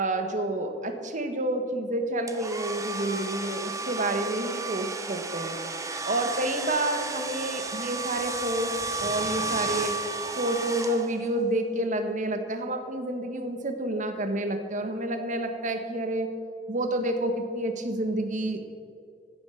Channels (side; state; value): both; normal; correlation 0.20